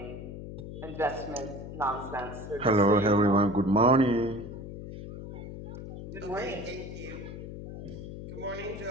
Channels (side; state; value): left; noise; hum, 10 dB below the sound